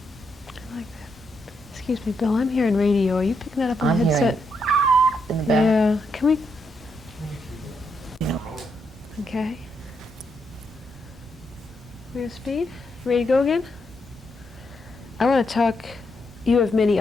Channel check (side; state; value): both; normal; correlation 0.80